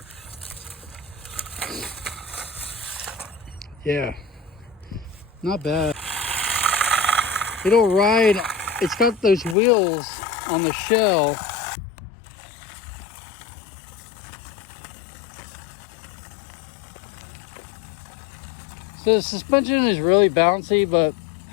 Yeah, not bad. It'll ride. It's got those wheels on the shell. So the suspension is really bouncy, but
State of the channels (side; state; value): right; drops out; at 9.6 s